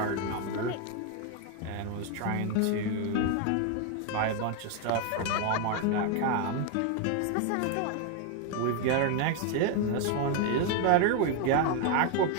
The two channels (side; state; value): both; different; correlation 0.01